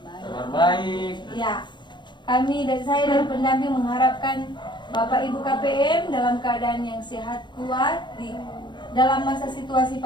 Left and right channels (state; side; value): late; right; 0.22 ms